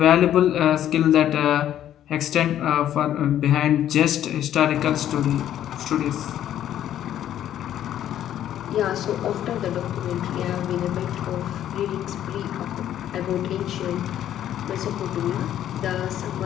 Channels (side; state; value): right; quieter; 11.3 dB